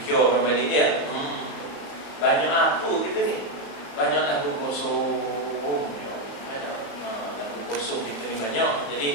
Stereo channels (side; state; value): right; late; 34 ms